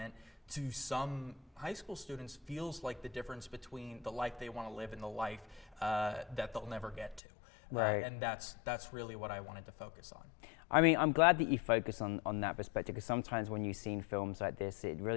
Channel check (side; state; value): right; drops out; at 7.2 s